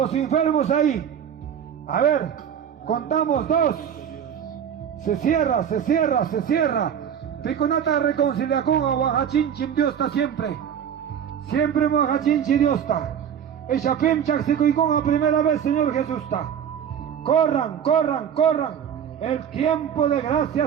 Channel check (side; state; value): left; quieter; 8.6 dB